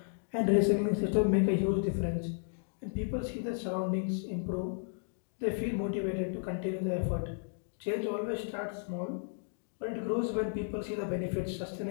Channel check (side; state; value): right; silent; digital silence